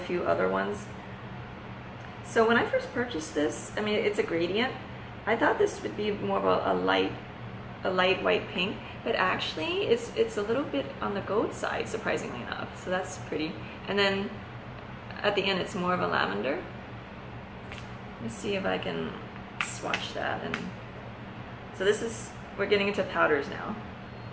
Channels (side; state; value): both; identical; correlation 1.00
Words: other ones. So when I first purchased this, I mean, it's a gradient. I thought this would be more of a light white pink, but actually it's a little bit on the gold side, surprisingly enough. So that's pretty. And then at the end, it's more of a lavender. Let's see if I can swatch that. And so this is, we're getting into powders now.